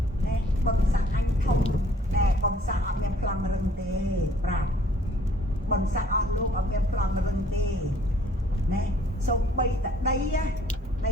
nè bấm sang anh thông nè bấm sang ở bên plan rừng tê bạc bấm sang ở luôn ở bên plan rừng tê nè xong bay tại đây á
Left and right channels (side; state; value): both; normal; correlation 0.59